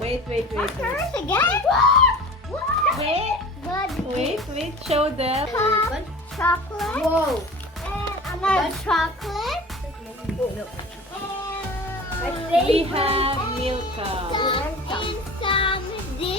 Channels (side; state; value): both; normal; correlation 0.38